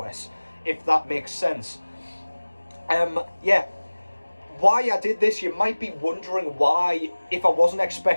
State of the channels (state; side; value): inverted; both; correlation -1.00